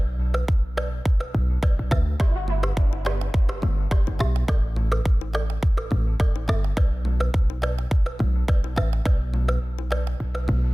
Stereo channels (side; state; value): both; normal; correlation 0.98